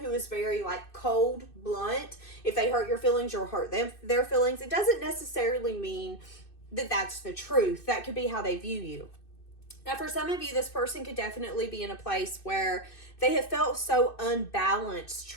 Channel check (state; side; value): late; right; 2.6 ms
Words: is very like cold, blunt. If they hurt your feelings, you'll hurt their feelings. It doesn't necessarily mean that that's the truth. That could be how they view you. Now, for some of you, this person could definitely be in a place where they have felt so unbalanced